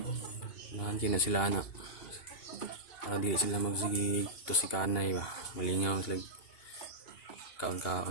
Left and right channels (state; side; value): late; right; 2.8 ms